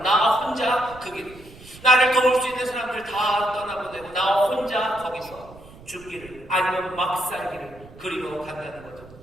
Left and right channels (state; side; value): noise; right; rumble, 20 dB below the sound